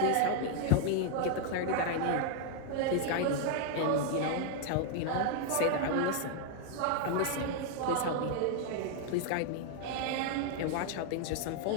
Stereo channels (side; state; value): both; different; correlation 0.00